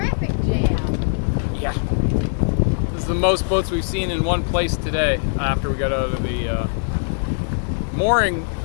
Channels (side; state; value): right; silent; digital silence